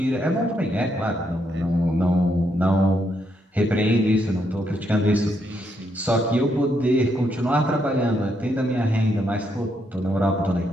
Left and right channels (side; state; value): both; normal; correlation 0.77